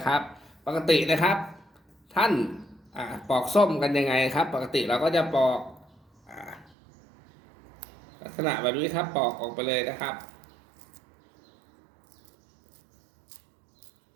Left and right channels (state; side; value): drops out; left; at 6.7 s